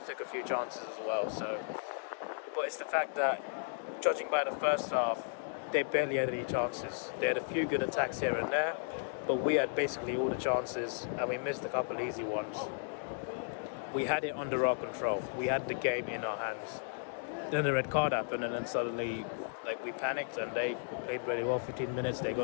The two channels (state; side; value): silent; right; digital silence